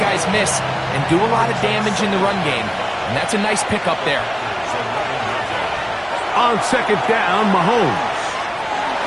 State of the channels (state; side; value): identical; both; correlation 1.00